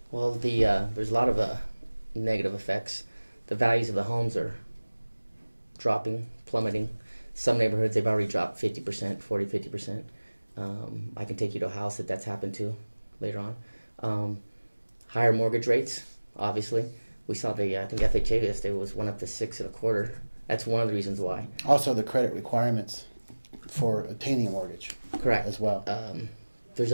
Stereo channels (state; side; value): inverted; both; correlation -1.00